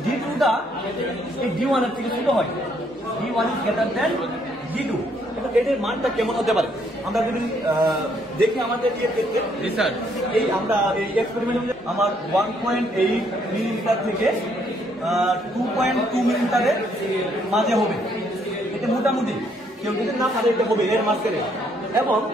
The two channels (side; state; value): both; normal; correlation 0.69